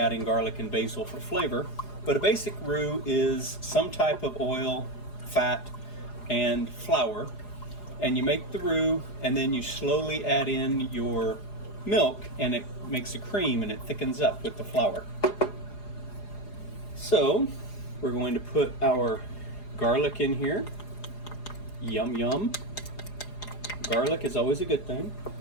garlic and basil for flavor, but a basic roux is some type of oil, fat, and flour, and you make the roux, and then you slowly add in your milk, and it makes a cream, and it thickens up with the flour. So we're going to put our garlic in here. Yum yum. Garlic is always a good thing.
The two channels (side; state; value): right; late; 4.8 ms